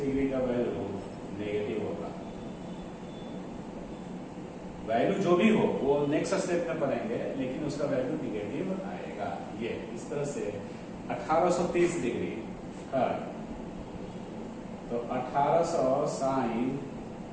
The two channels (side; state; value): both; identical; correlation 1.00